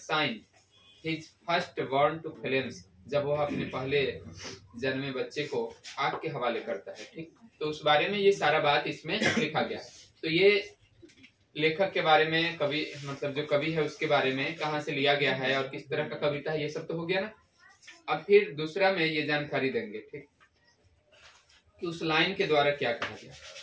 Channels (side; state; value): both; identical; correlation 1.00